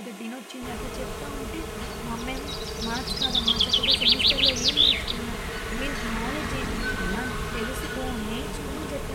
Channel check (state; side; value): identical; both; correlation 1.00